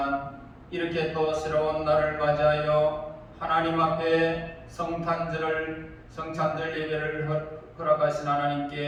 이렇게 또 새로운 날을 맞이하여 하나님 앞에 성탄절 예배를 허락하신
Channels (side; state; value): both; identical; correlation 1.00